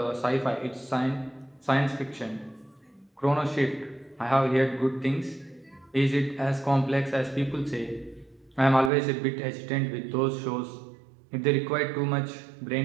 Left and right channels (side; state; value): left; drops out; at 8.9 s